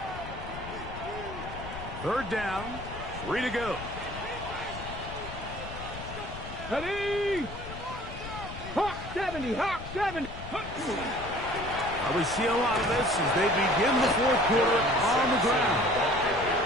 Third down, 3 to go. Ready? Hawk 70, Hawk 70. Well, we see a lot of this as they begin the 4th quarter on the ground.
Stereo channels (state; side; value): noise; left; rumble, 11 dB below the sound